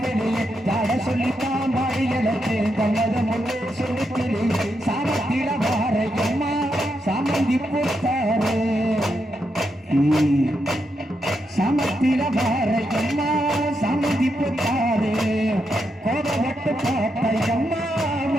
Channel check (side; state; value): both; normal; correlation 0.83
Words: வெளியே தாட சொல்லித்தான் மாறியலத்து தன்னத முன்னே சொல்லித்திலே சாமத்தில வாரையம்மா சாமந்தி புத்தாரு சமத்தில பாரையம்மா சமதி புத்தாரு கோபப்பட்டு பார்த்தையம்மா